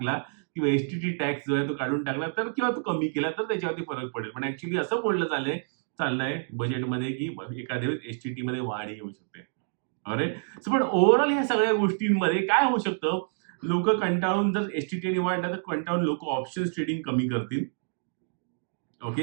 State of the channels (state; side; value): silent; left; digital silence